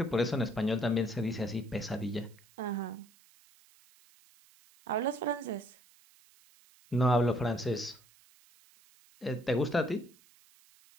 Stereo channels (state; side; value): noise; right; hiss, 28 dB below the sound